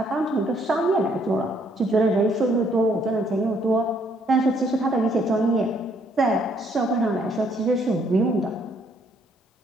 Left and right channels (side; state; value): both; normal; correlation 0.68